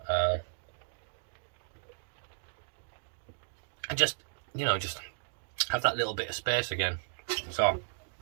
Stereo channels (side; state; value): left; silent; digital silence